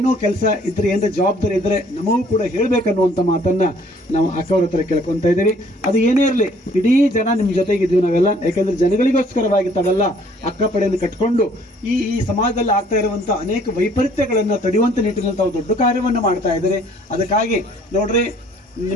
ಕೆಲಸ ಇದ್ರೆ, ಏನಾರ ಜವಾಬ್ದಾರಿ ಇದ್ರೆ ನಮಗೂ ಕೂಡ ಹೇಳ್ಬೇಕನ್ನುವಂಥ ಮಾತನ್ನ ನಾವು ಅಕ್ಕವ್ರ ಹತ್ರ ಕೇಳ್ಕೊತ ಇದ್ದೀವಿ. ಅದು ಏನೇ ಇರಲಿ, ಇಡೀ ಜನ ನಿಮ್ಮ ಜೊತೆಗಿದ್ದೀವಿ ನಾವೆಲ್ಲ. ಯಾಕಂದ್ರೆ ಜನಗಳಿಗೋಸ್ಕರವಾಗಿ ತಾವೆಲ್ಲ ಅಕ್ಕ ಪಡೆಯನ್ನು ಕಟ್ಕೊಂಡು ಈ ಸಮಾಜದಲ್ಲಿ ಆಗ್ತಾ ಇರುವಂಥ ಅನೇಕ ವೈಪರೀತ್ಯಗಳನ್ನು ತಡೆಯುವಂಥ ನಿಟ್ಟಿನಲ್ಲಿ ತಾವು ದೊಡ್ಡ ಕಾರ್ಯವನ್ನು ಮಾಡ್ತಾ ಇದ್ದೀರಿ. ಅದಕ್ಕಾಗಿ ನೋಡ್ರಿ,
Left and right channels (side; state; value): both; normal; correlation 0.59